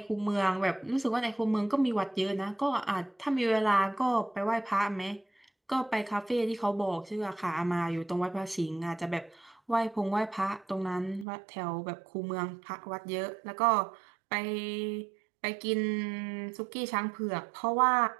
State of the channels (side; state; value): left; drops out; at 11.2 s